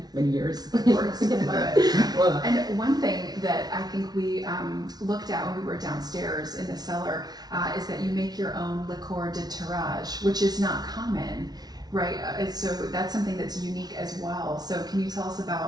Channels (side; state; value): left; late; 0.19 ms